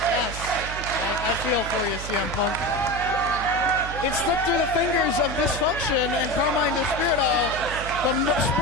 Yes, I feel for you, CM Punk. It slipped through the fingers of Dysfunction and Carmine Despirito. The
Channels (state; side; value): noise; right; hum, 9 dB below the sound